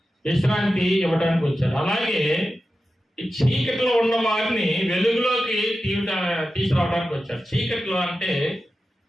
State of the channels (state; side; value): normal; both; correlation 0.92